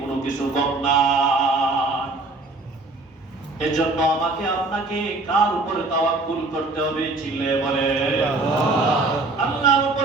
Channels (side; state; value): left; quieter; 3.2 dB